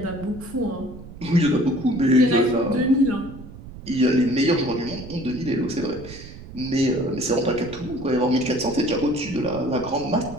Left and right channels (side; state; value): right; noise; rumble, 15 dB below the sound